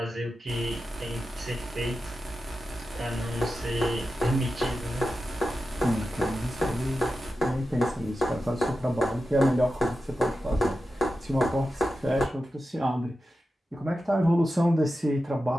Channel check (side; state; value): both; normal; correlation 0.91